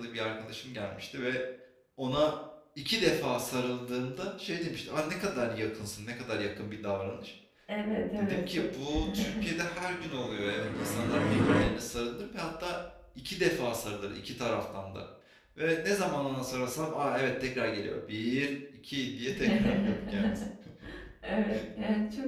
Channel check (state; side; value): identical; both; correlation 1.00